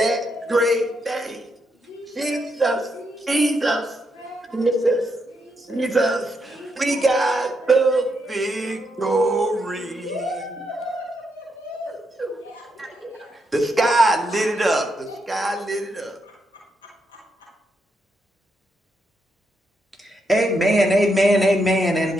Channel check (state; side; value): normal; both; correlation 0.80